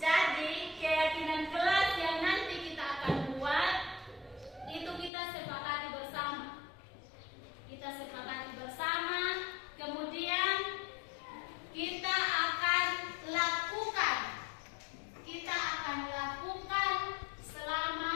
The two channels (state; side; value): drops out; right; at 5.1 s